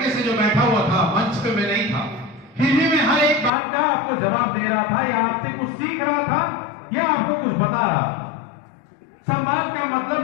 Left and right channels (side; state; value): right; drops out; at 3.5 s